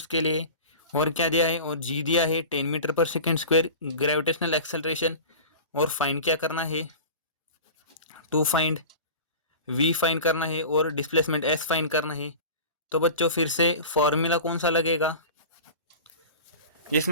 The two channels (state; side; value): inverted; both; correlation -0.35